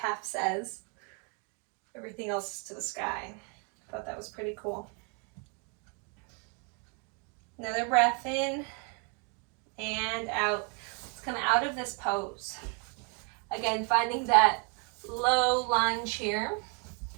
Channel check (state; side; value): quieter; left; 36.7 dB